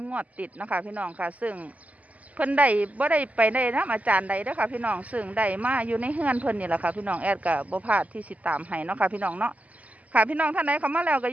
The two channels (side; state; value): left; late; 0.073 ms